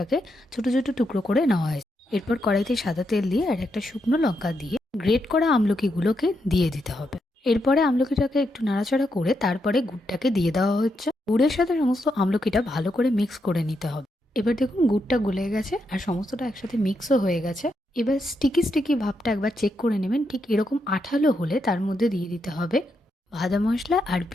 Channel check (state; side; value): normal; both; correlation 0.82